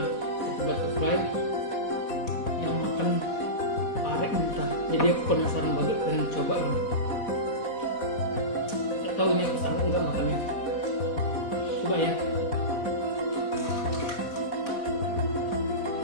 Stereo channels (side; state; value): right; late; 4.2 ms